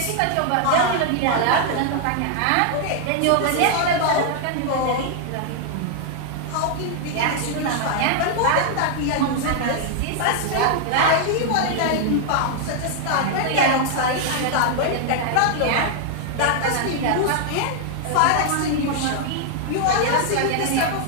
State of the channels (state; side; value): different; both; correlation 0.00